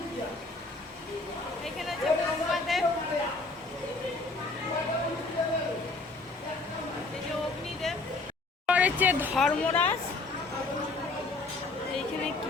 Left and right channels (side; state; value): right; quieter; 3.4 dB